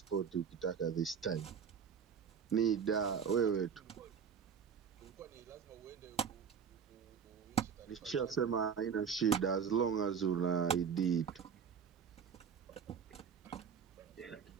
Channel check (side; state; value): left; quieter; 7.0 dB